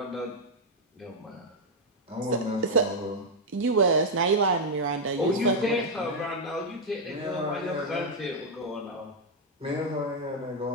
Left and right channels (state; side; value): normal; both; correlation 0.00